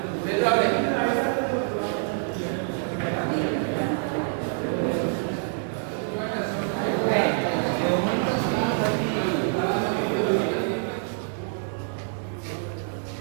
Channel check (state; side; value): silent; left; 61 dB below the other